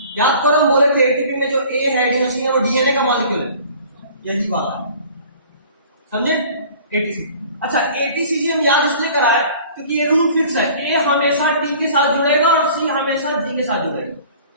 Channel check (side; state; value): both; inverted; correlation -0.48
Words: याद करो, हम बोले थे एटीपी में जो ए है एडिनोसिन है वो डीएनए का मॉलिक्यूल है, यही वाला है, समझे? एटीसी। अच्छा, एटीसीजी हम याद इसलिए कराए क्योंकि ये रूल फिक्स है, ए हमेशा टी के साथ जुड़ेगा और सी हमेशा जी के साथ जुड़ेगा,